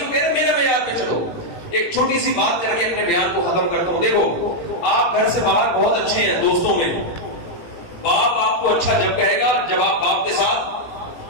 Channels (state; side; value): late; right; 18 ms